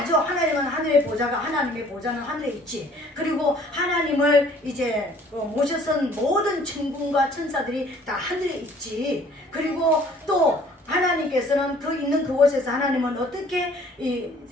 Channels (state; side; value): normal; both; correlation 0.55